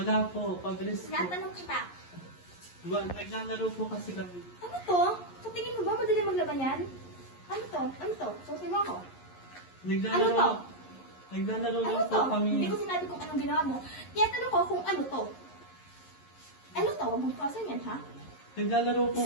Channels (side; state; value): right; late; 11 ms